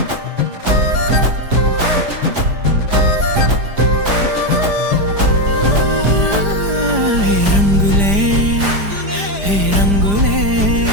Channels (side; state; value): left; late; 5.0 ms